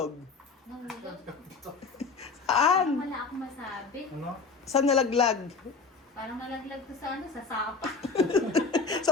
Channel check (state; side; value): quieter; right; 4.6 dB